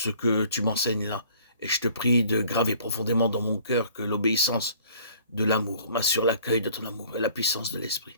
que tu m'enseignes là, et je te prie de graver profondément dans mon cœur que l'obéissance de l'amour m'assure l'accueil de ton amour et la puissance de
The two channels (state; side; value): inverted; both; correlation -0.54